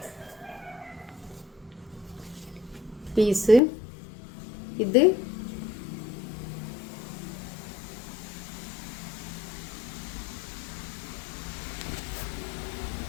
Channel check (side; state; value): right; drops out; at 3.6 s